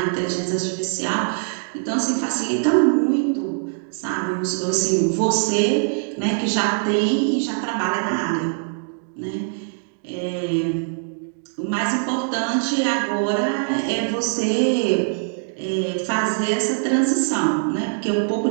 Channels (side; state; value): left; silent; digital silence